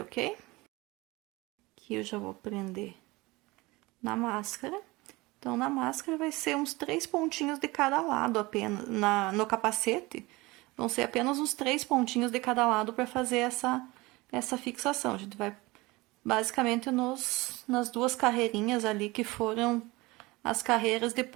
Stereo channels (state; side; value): quieter; left; 22.3 dB